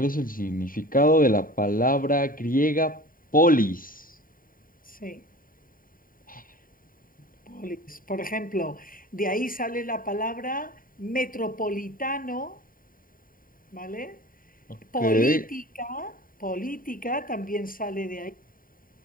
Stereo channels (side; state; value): right; late; 0.41 ms